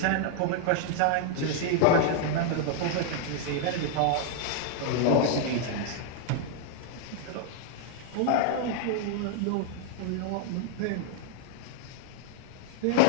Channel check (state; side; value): different; both; correlation 0.00